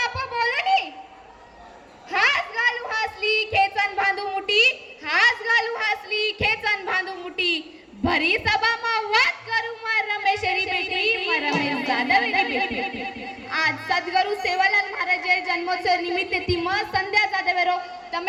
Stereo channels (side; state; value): both; identical; correlation 1.00